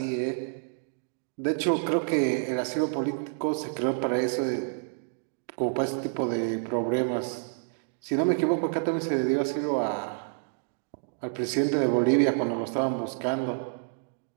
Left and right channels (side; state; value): left; silent; digital silence